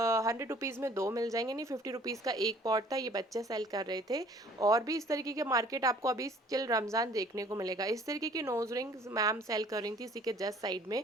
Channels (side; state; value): both; normal; correlation 0.54